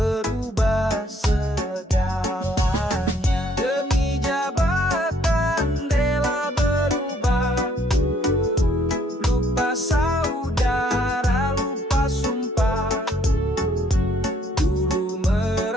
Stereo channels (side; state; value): both; normal; correlation 0.65